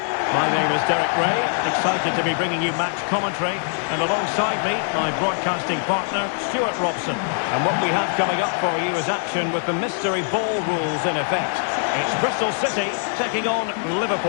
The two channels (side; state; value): right; silent; 64 dB below the other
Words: My name is Derek Ray, excited to be bringing you match commentary. And alongside me, my broadcasting partner, Stuart Robson. And what we have coming up for you is action with the mystery ball rules in effect. It's Bristol City taking on